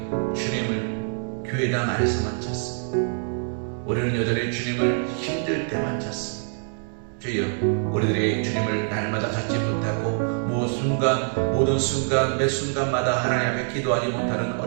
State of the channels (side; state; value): left; silent; 62 dB below the other